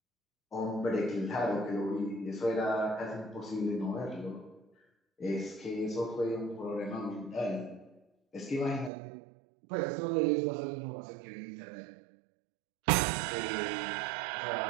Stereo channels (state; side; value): drops out; left; at 8.9 s